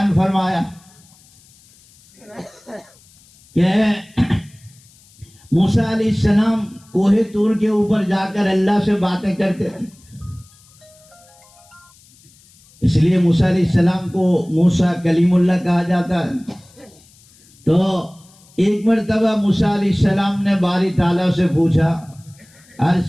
فرمایا کہ موسیٰ علیہ السلام کوہ طور کے اوپر جا کر اللہ سے باتیں کرتے تھے، اس لیے موسیٰ علیہ السلام کو موسیٰ کلیم اللہ کہا جاتا ہے۔ تو ایک مرتبہ موسیٰ علیہ السلام نے باری تعالیٰ سے پوچھا،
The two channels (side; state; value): left; noise; hiss, 28 dB below the sound